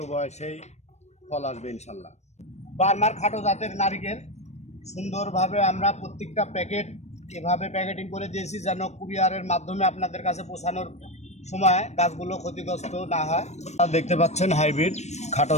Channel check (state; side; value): late; right; 0.32 ms